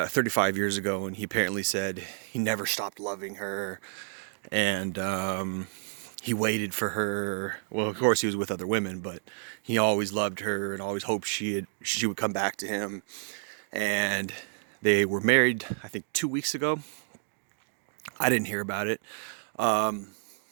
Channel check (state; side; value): silent; left; digital silence